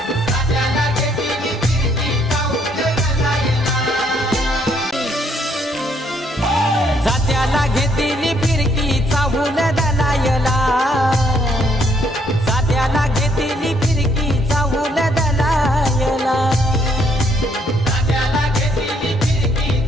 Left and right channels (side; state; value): both; normal; correlation 0.69